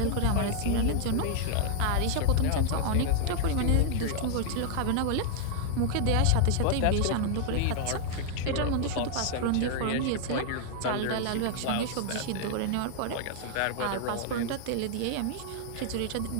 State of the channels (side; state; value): both; different; correlation 0.00